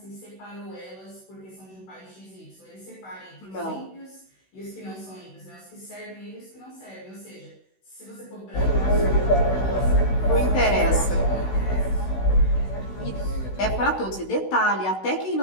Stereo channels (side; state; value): right; late; 16 ms